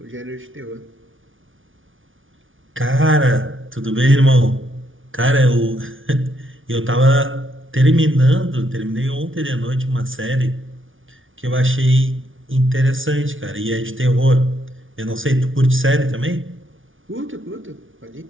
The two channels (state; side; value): late; left; 0.57 ms